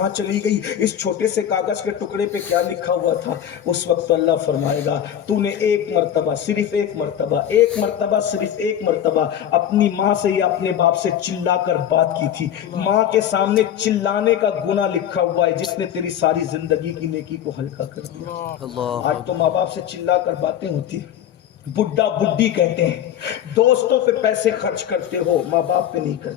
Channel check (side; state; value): right; quieter; 10.1 dB